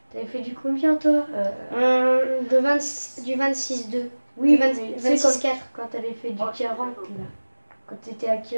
T'avais fait du combien, toi Du 26-2. Oui, du 20 mais tu sais, 26-4. quand t'avais fait du 40, là. Quand t'étais à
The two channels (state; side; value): inverted; both; correlation -1.00